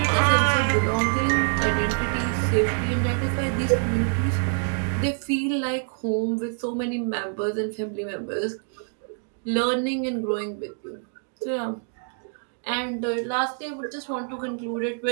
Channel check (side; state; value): left; silent; 61 dB below the other